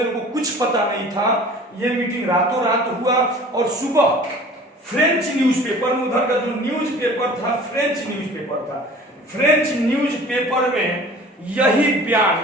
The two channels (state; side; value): normal; both; correlation 0.45